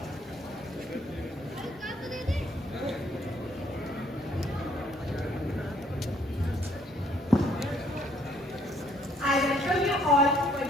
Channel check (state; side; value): normal; both; correlation 0.65